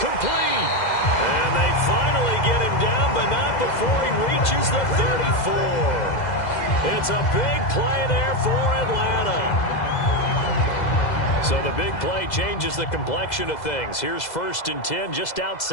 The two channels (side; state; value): right; late; 2.0 ms